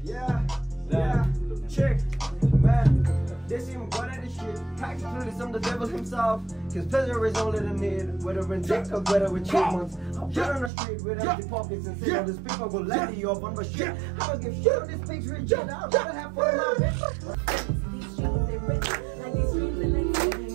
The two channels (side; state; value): left; drops out; at 10.7 s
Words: Check, man. They seem good at this shit. Practically, I'm the devil himself. Cause pleasure is all that I need. Whether in dick or whether with chipmunks. I'm shit on the street with empty pockets and say all this people go let you up on my shit. I don't give shit on this picture. I'd rather have fun in my bitch. These streets, they rich. Like these streets, they like